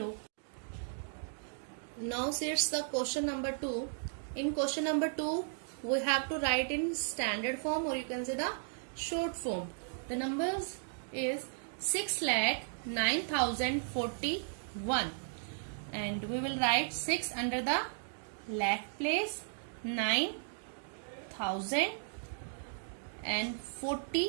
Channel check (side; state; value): left; silent; digital silence